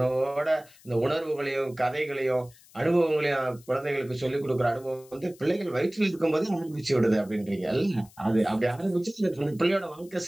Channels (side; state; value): left; noise; hiss, 25 dB below the sound